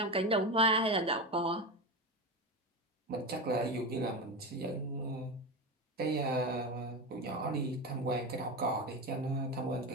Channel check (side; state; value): both; normal; correlation 0.20